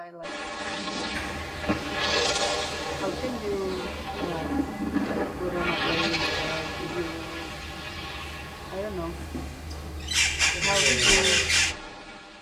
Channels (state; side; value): identical; both; correlation 1.00